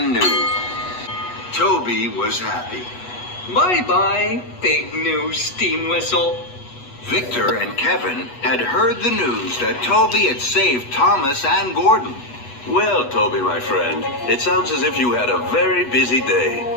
new. Toby was happy. Bye-bye, big new steam whistle. Victor and Kevin had heard the news that Toby had saved Thomas and Gordon. Well, Toby, my friend, it sounds as if you had a very busy day.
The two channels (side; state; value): right; late; 8.2 ms